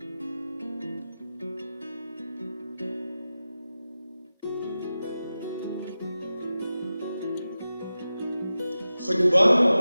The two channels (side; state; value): both; inverted; correlation -0.94